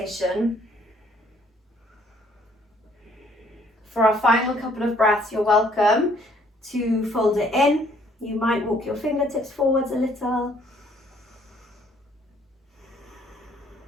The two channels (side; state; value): both; normal; correlation 0.63